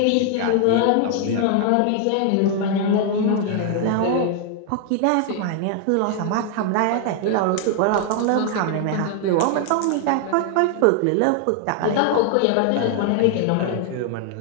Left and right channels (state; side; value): different; both; correlation 0.00